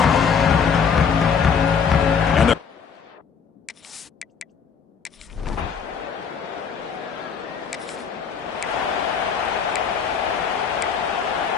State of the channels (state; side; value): quieter; right; 6.6 dB